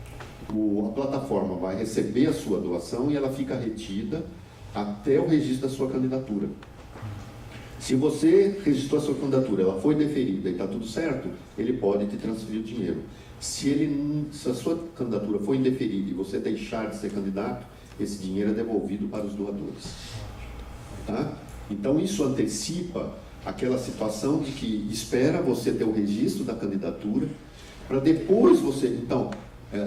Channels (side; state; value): both; identical; correlation 1.00